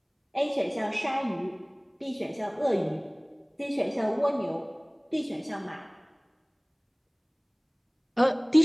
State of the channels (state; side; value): identical; both; correlation 1.00